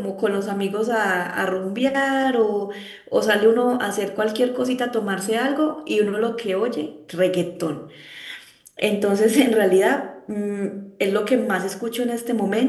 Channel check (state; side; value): identical; both; correlation 1.00